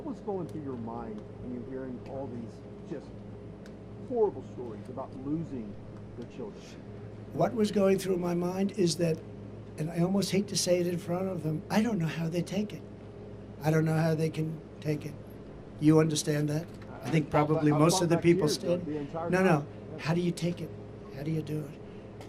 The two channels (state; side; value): identical; both; correlation 1.00